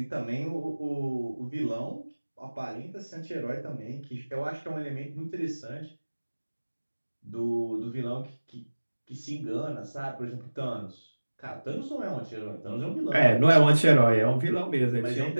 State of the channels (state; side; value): inverted; both; correlation -1.00